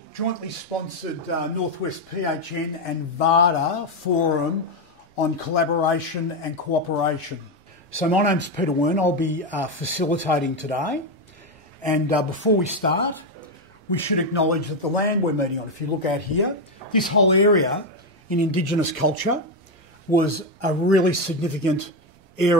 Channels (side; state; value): both; normal; correlation 0.07